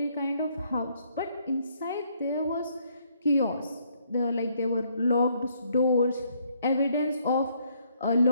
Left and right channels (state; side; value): inverted; both; correlation -0.69